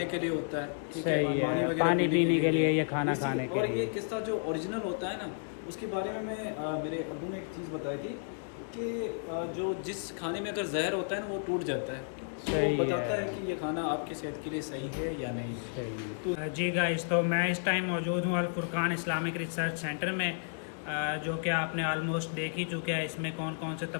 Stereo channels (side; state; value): right; silent; digital silence